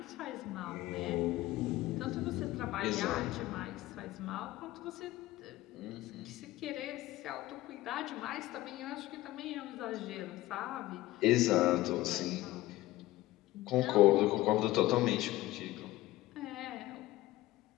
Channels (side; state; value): right; quieter; 17.1 dB